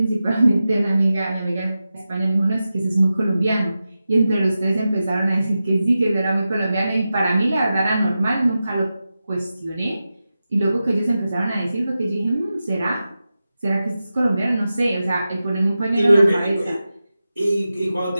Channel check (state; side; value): inverted; both; correlation -0.92